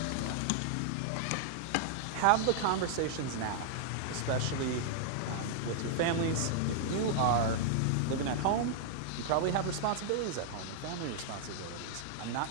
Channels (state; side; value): different; both; correlation -0.01